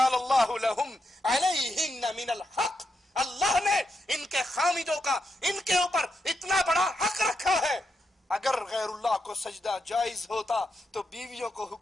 اللہ لہم علیہن من الحق، اللہ نے ان کے خاوندوں کا ان کے اوپر اتنا بڑا حق رکھا ہے، اگر غیر اللہ کو سجدہ جائز ہوتا تو بیویوں کو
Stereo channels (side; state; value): both; normal; correlation 0.83